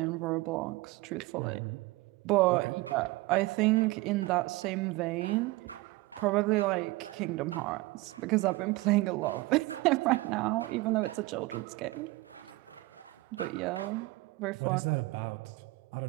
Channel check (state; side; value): quieter; left; 21.1 dB